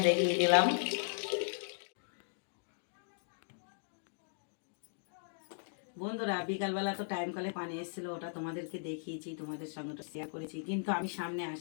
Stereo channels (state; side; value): silent; right; digital silence